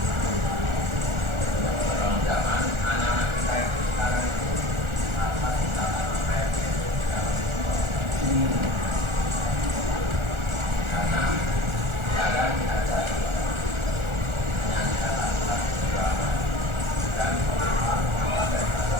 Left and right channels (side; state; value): left; late; 1.4 ms